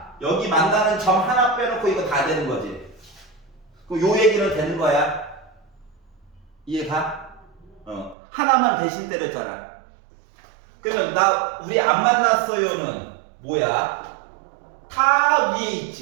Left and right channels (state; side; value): drops out; left; at 8.2 s